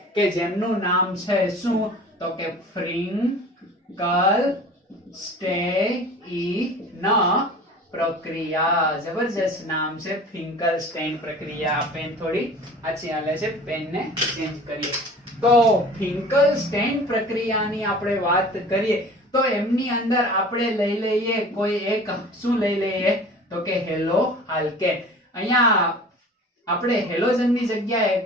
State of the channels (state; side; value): normal; both; correlation 0.43